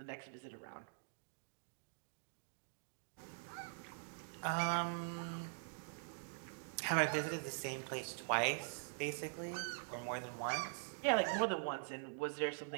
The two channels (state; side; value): silent; left; digital silence